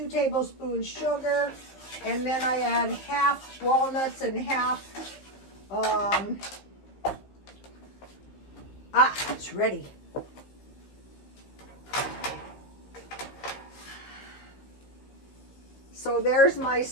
tablespoons sugar, and then I add half walnuts and half, it's ready. So there's my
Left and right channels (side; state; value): right; late; 15 ms